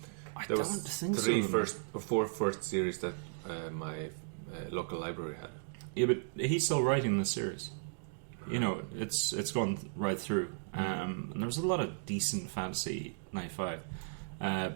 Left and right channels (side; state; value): left; silent; digital silence